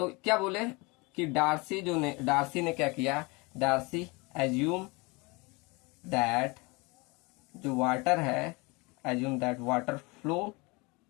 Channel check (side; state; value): right; quieter; 27.0 dB